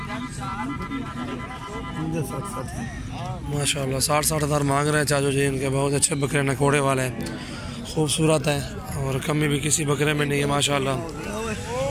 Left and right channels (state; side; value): identical; both; correlation 1.00